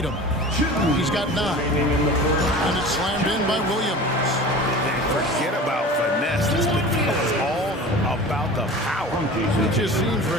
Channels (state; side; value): normal; both; correlation 0.37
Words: He's got 9. And it's slammed in by Williams. And forget about finesse. This is all about the power. It just seems,